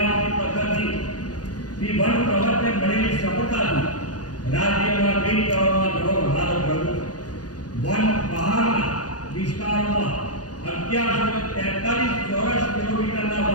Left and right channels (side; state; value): right; late; 0.69 ms